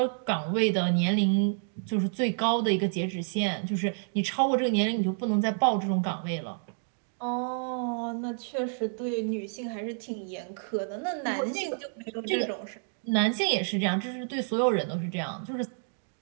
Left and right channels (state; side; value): silent; left; digital silence